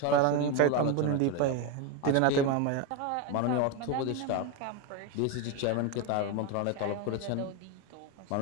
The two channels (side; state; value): both; different; correlation 0.03